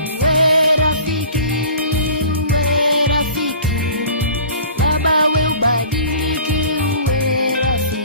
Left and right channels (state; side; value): inverted; both; correlation -0.44